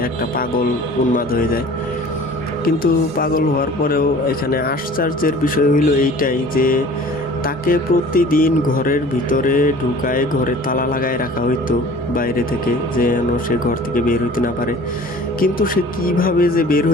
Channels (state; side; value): normal; both; correlation 0.46